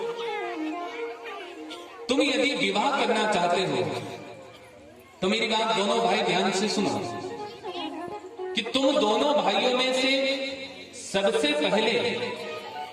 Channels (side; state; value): both; identical; correlation 1.00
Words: तुम यदि विवाह करना चाहते हो तो मेरी बात दोनों भाई ध्यान से सुनो कि तुम दोनों भाइयों में से सबसे पहले